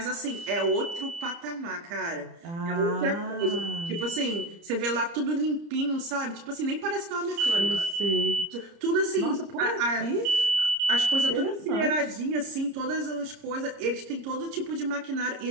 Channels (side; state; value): left; late; 30 ms